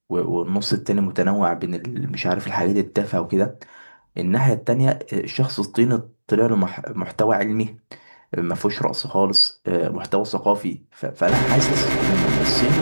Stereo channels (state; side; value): inverted; both; correlation -1.00